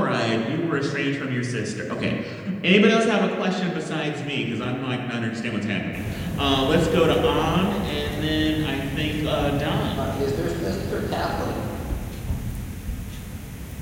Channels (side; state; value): both; identical; correlation 1.00